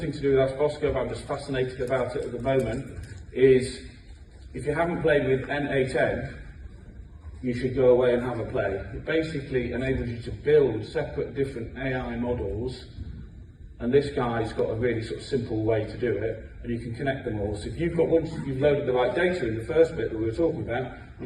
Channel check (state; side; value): identical; both; correlation 1.00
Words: to do with Ask Bosco, but I'm just fascinated about it at the moment, is if you haven't played with N8N, you should go away and have a play. It basically enables you to build separate different AI models, and this guy's got a really sort of simple way to do it, and you can connect them all. So if you've got, once you've loaded the right data in the first bit that we were talking about,